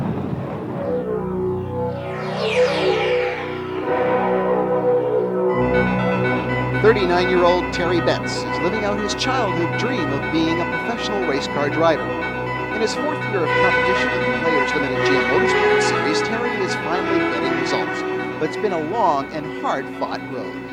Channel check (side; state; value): both; identical; correlation 1.00